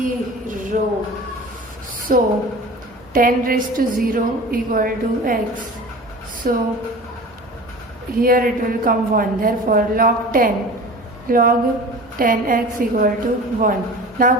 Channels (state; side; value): normal; both; correlation 0.38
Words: So 10 raised to 0 equal to x. So here it will come 1. Therefore log 10x equal to 1. Now